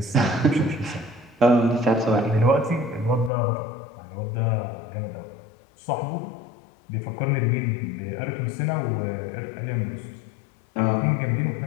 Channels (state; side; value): drops out; right; at 3.3 s